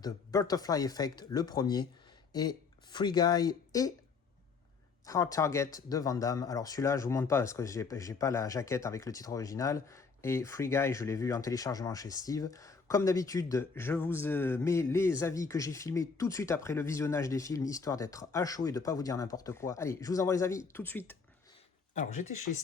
The Butterfly Effect, le premier, et Free Guy et Hard Target de Van Damme. Alors celui-là je vous montre pas parce que j'ai pas la jaquette avec le titre original, et Free Guy je l'ai vu en téléchargement chez Steve. Comme d'habitude, je vous mets les avis que j'ai filmés tout de suite après le visionnage des films, histoire d'être à chaud et de pas vous dire n'importe quoi. Allez, je vous envoie les avis tout de suite. Alors j'étais chez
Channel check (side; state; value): right; quieter; 5.0 dB